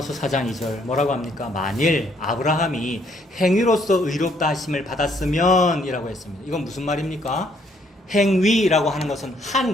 4장 2절 뭐라고 합니까? 만일 아브라함이 행위로서 의롭다 하심을 받았으면 이라고 했습니다. 이건 무슨 말입니까? 행위라고 하는 것은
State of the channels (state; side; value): normal; both; correlation 0.68